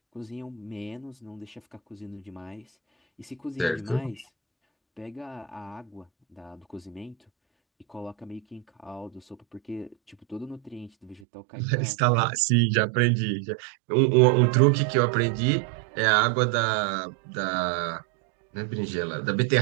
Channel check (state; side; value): drops out; left; at 11.2 s